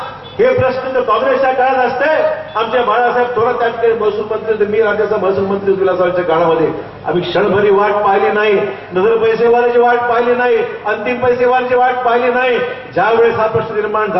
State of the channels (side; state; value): both; identical; correlation 1.00